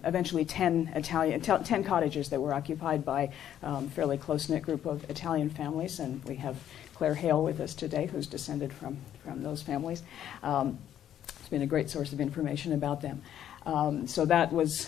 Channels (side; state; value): right; quieter; 10.6 dB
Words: eventually 10 cottages that were occupied by a fairly close-knit group of Italian families, and we have Claire Hale with us today, who's descended from those families. It's been a great source of information about them. So that was